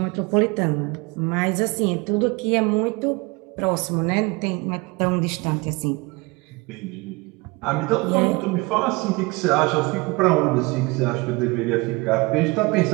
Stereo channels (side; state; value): left; quieter; 25.6 dB